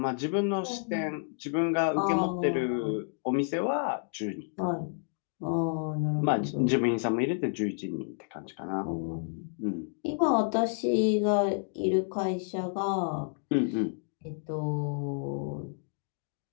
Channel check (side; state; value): right; silent; digital silence